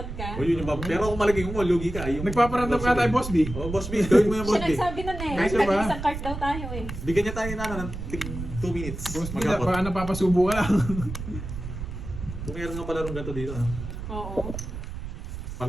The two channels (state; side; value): noise; right; rumble, 8 dB below the sound